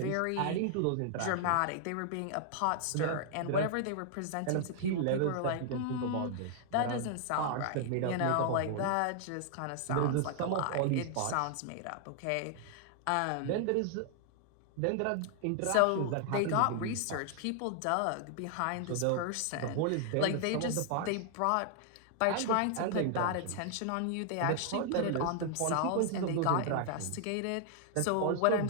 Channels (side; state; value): both; different; correlation 0.00